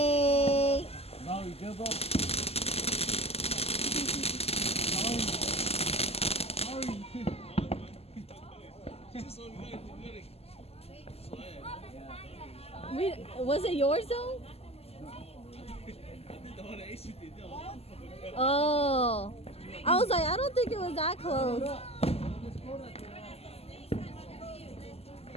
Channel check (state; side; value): late; right; 0.29 ms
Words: Now you give up. Was it yours though? Oh. I was like, I don't think it was that close.